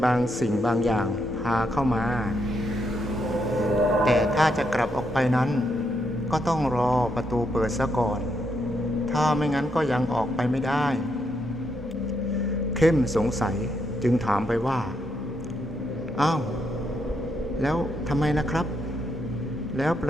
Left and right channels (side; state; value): both; normal; correlation 0.78